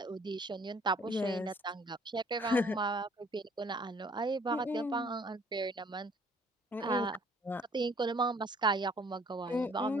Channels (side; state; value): both; normal; correlation 0.58